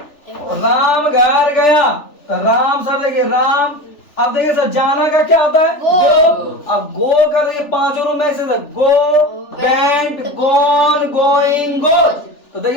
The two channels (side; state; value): right; late; 3.4 ms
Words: राम घर गया, तो राम सर देखिए, राम। अब देखिए सर, जाना का क्या होता है? गो। अब गो का देखिए पांचों रूप में से गो, वेंट, गॉन, गोइंग, गोज। तो